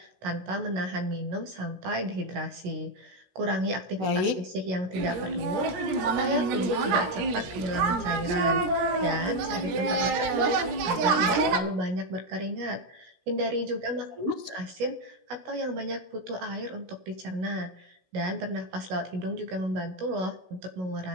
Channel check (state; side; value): late; left; 17 ms